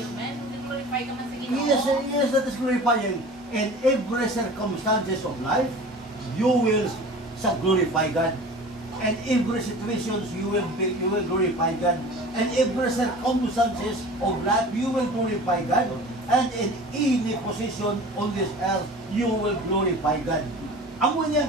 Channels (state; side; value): normal; both; correlation 0.40